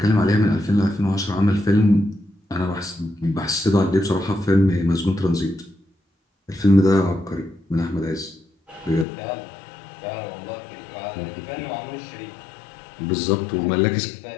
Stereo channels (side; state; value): right; drops out; at 9.1 s